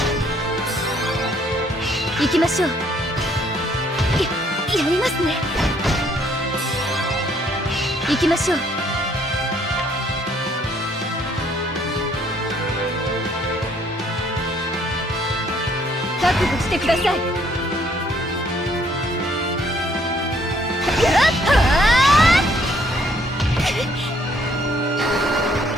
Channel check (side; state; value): both; normal; correlation 0.65